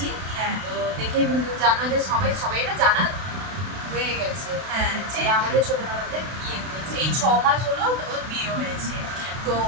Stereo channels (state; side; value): late; left; 32 ms